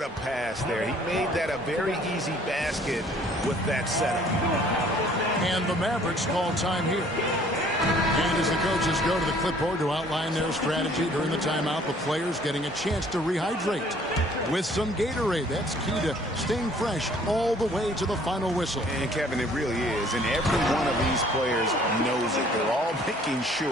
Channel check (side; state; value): both; normal; correlation 0.57